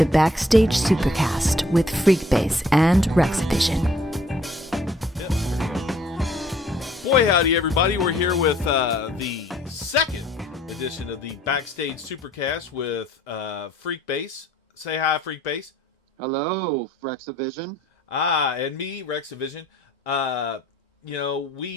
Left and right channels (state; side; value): normal; both; correlation 0.60